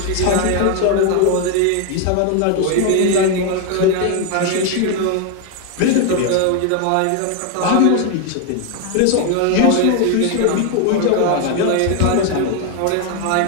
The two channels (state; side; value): different; both; correlation 0.01